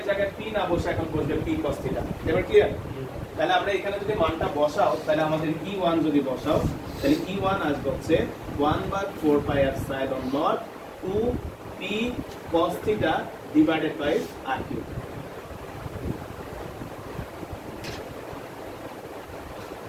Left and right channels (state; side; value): identical; both; correlation 1.00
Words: জায়গায় পি না বসে এখন বসবে পি cos θ। এবার ক্লিয়ার? তাহলে আমরা এখানে যদি মানটা বসাও, তাহলে আমাদের E1 যদি বসাও, তাহলে E1 আসবে হচ্ছে 1/4πε0 2p cos θ divided by r cube.